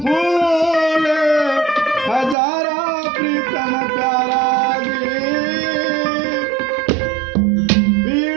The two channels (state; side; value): drops out; left; at 2.4 s